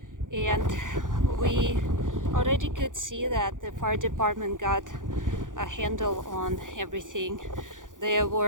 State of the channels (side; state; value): left; late; 0.88 ms